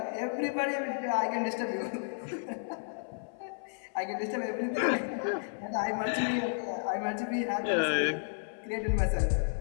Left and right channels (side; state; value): right; silent; 56 dB below the other